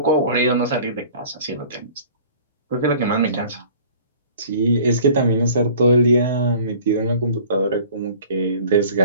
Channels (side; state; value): both; inverted; correlation -0.48